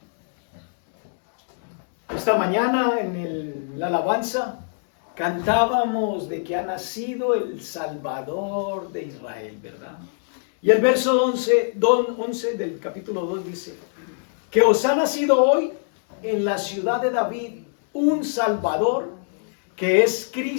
Esta mañana en la alabanza cantábamos de que ha nacido el Salvador de Israel, ¿verdad? Y el verso 11 del capítulo 2 dice que os ha nacido hoy en la ciudad de David un Salvador que es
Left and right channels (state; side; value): silent; right; digital silence